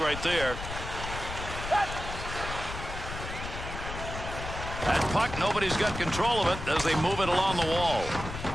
there. That puck, nobody's got control of it as they move it along the wall.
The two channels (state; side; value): noise; left; rumble, 8 dB below the sound